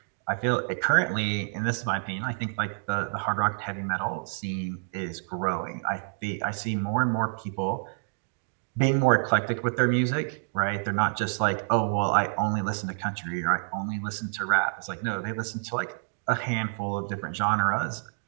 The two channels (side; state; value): left; silent; digital silence